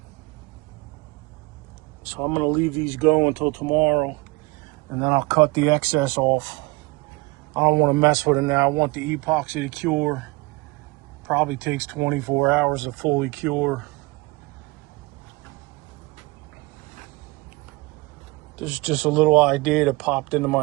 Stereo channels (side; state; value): left; quieter; 23.6 dB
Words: So I'm gonna leave these go until tomorrow and then I'll cut the excess off. I don't wanna mess with it now. I want the epoxy to cure. Probably takes 24 hours to fully cure. This is just a little idea that popped into